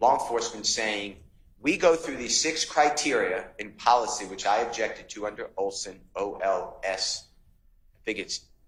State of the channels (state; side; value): identical; both; correlation 1.00